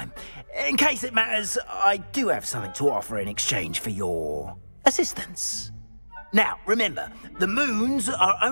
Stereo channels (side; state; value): both; inverted; correlation -1.00